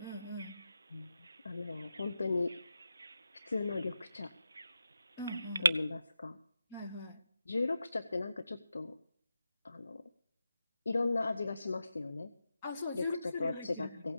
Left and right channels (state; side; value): inverted; both; correlation -0.89